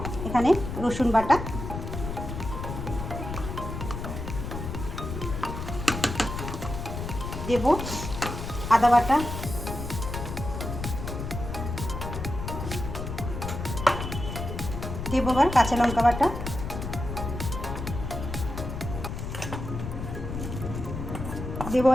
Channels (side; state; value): left; noise; rumble, 6 dB below the sound